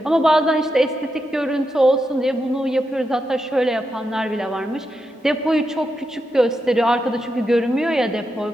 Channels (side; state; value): both; normal; correlation 0.85